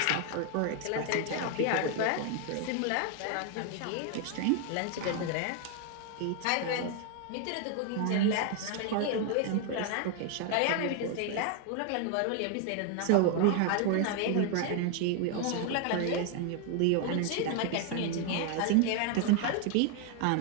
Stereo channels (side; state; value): both; different; correlation 0.00